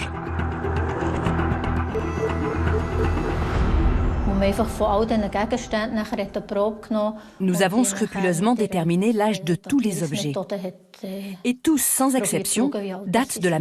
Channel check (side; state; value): both; identical; correlation 1.00